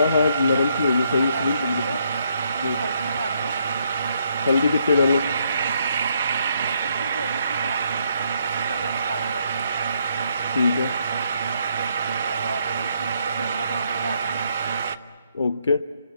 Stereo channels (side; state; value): both; inverted; correlation -0.73